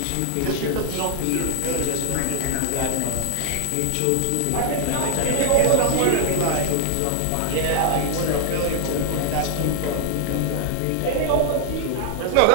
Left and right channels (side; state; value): both; different; correlation 0.00